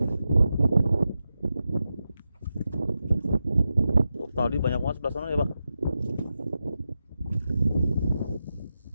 Tadi banyak banget sebelah sana ya Pak.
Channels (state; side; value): inverted; both; correlation -0.90